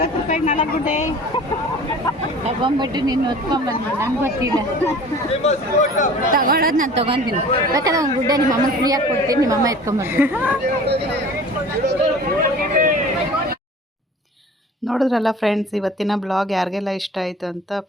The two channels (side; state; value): both; normal; correlation 0.44